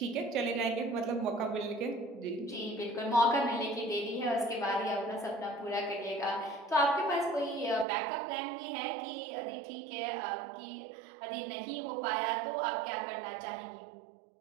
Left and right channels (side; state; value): left; drops out; at 7.9 s